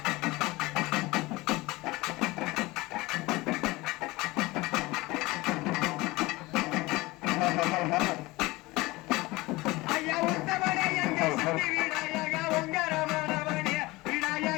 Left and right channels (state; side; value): quieter; right; 21.3 dB